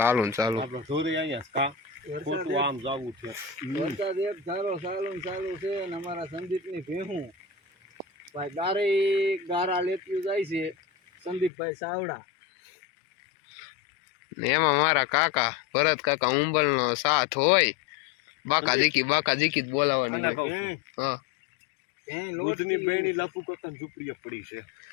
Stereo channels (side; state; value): right; drops out; at 11.5 s